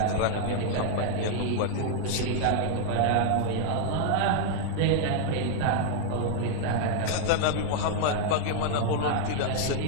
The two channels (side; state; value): both; different; correlation 0.00